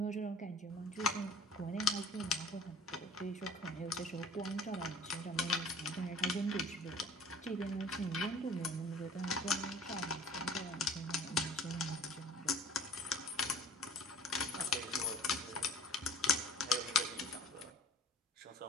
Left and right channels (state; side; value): normal; both; correlation 0.47